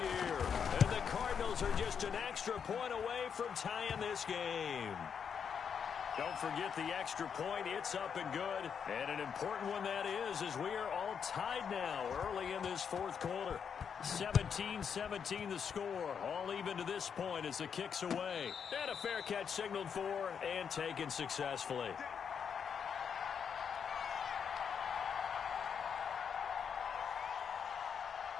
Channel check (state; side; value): quieter; right; 7.1 dB